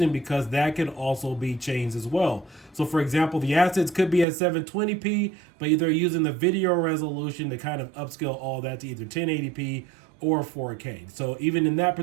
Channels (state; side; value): drops out; left; at 4.2 s